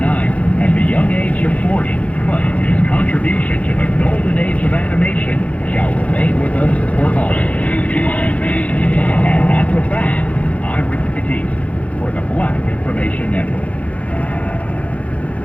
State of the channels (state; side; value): late; right; 0.066 ms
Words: at the young age of 40, but his contribution to the golden age of animation shall remain with us for always. And that's a fact. I'm Rick Batiste for the Black Information Network.